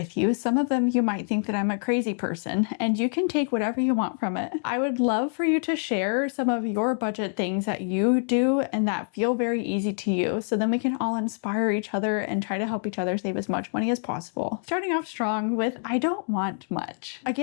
you. Some of them you might think that I'm a crazy person, and you can take whatever you want from it. I would love for you to share some of your budget things that you do and that feel very easy to you, so then we can all inspire each other and try to help each other save as much money as possible. Starting off strong with I don't want much.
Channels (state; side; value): silent; right; 61 dB below the other